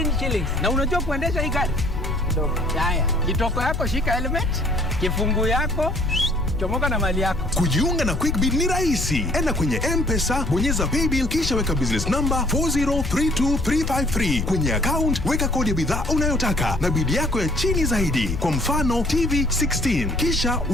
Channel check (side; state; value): left; noise; rumble, 5 dB below the sound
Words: shillings. Na unajua kuendesha hii gari? Kidogo. Haya, kitoko yako shika helmet, kifungu yako chomoka na mali yako. Kujiunga na QuickBid ni rahisi. Enda kwenye M-Pesa, bonyeza paybill kisha weka business number 4032353. Kwenye account weka kodi ya bidhaa unayotaka na bid yako ya chini zaidi. Kwa mfano TV 16. Kisha